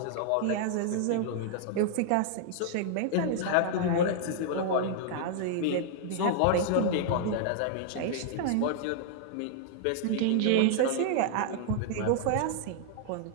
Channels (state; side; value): different; both; correlation -0.01